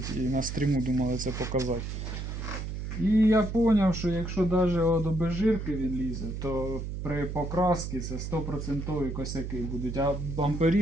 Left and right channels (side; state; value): right; noise; hum, 5 dB below the sound